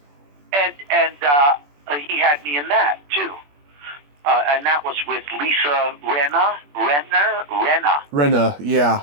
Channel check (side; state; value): left; late; 21 ms